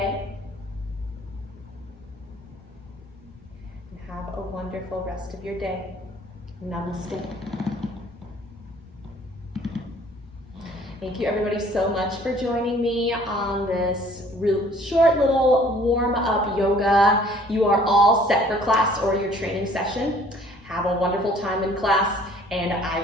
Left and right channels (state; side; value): normal; both; correlation 0.55